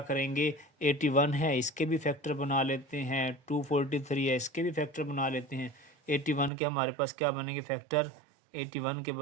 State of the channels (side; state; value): left; drops out; at 6.5 s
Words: 81 है इसके भी फैक्टर बना लेते हैं, 243 है इसके भी फैक्टर बना लेते हैं। 81 के हमारे पास क्या बनेंगे फैक्टर, 81 के